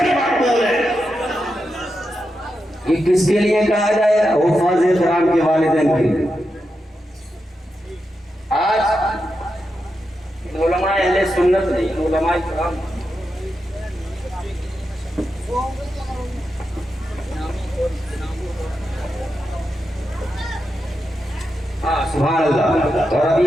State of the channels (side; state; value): both; normal; correlation 0.87